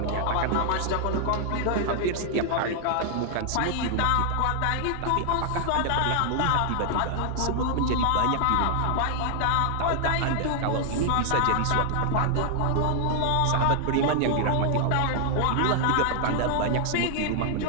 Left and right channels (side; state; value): both; different; correlation 0.00